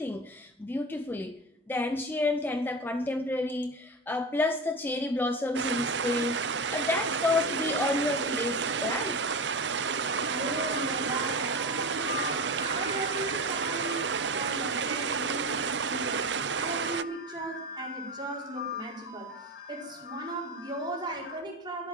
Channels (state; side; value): normal; both; correlation 0.25